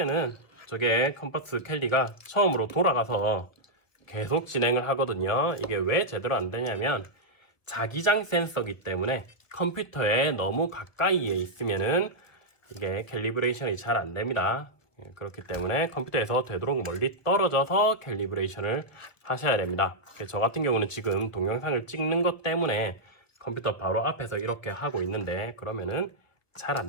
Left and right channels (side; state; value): right; late; 1.2 ms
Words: 저게 컴퍼스 캘리가 처음으로 돌아가서 계속 진행을 하거든요. 이게 왜 제대로 안 되냐면 자기장 센서기 때문에 컴퓨터에 너무 가까이에 있으면은 이게 캘리브레이션이 잘 안 됩니다. 그렇기 때문에 컴퓨터에서 되도록 멀리 떨어져서 캘리브레이션을 하셔야 됩니다. 저 같은 경우는 지금 동영상을 찍는 것 때문에 컴퓨터 바로 앞에서 이렇게 하고 있는데 그러면은 잘